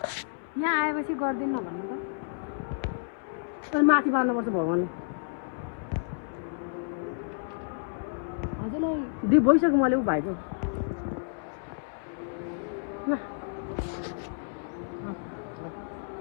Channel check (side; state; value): right; silent; 58 dB below the other